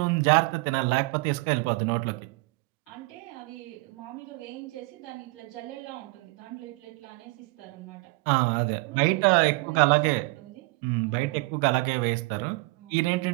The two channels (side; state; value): left; quieter; 25.0 dB